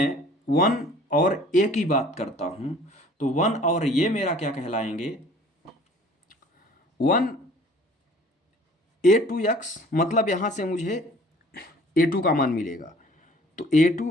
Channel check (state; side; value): normal; both; correlation 0.51